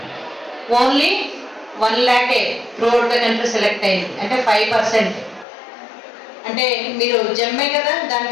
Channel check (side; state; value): right; drops out; at 5.5 s